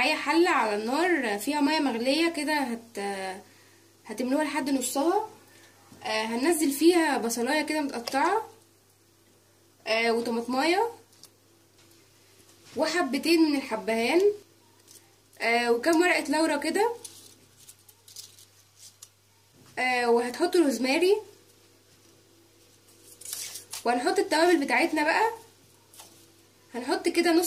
حلة على النار فيها مية مغلية كده، هتملوها لحد نصها. هننزل فيها بصلاية كده متقطعة، وطماطمايه وحبتين من الحبهان، وكام ورقة لورا كده، وهتحط روزماري، وهنحط التوابل بتاعتنا بقى. هنحط كده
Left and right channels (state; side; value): identical; both; correlation 1.00